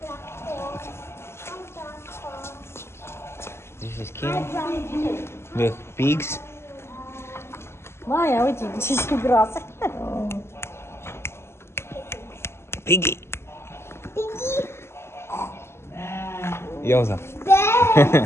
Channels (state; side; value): late; right; 0.12 ms